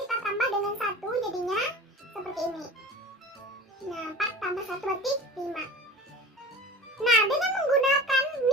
tambah dengan 1 jadinya seperti ini. Nah, 4 tambah 1 berarti 5. Nah, dengan menggunakan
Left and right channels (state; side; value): normal; both; correlation 0.37